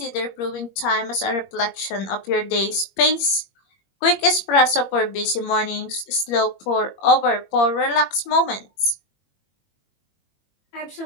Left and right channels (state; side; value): late; right; 21 ms